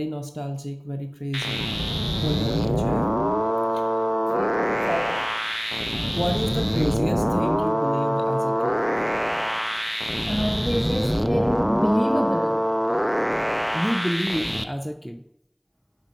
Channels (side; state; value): both; identical; correlation 1.00